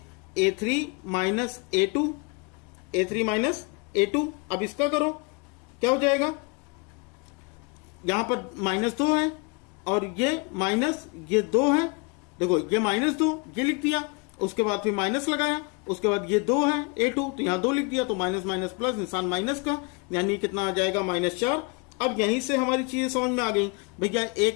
- a2, a3 - a2। अब इसका करो, क्या हो जाएगा? यहां पर -2 है और ये माइनस, ये 2 है। देखो ये -2 ये लिख दिया, उसके बाद फिर माइनस लगाया, उसके बाद ये 2 है a2, तो यहां 2 लिख दिया, तो माइनस प्लस, निशान माइनस का, यानी कितना आ जाएगा? -4। अब यहीं से हमारी चीजें समझ में आ गई भैया,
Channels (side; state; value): right; quieter; 31.5 dB